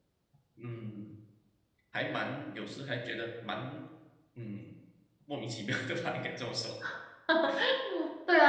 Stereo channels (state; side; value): identical; both; correlation 1.00